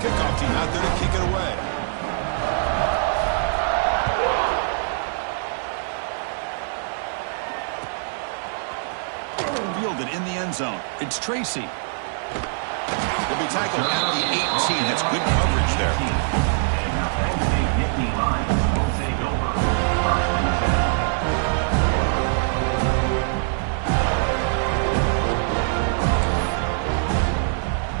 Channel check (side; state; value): left; silent; 56 dB below the other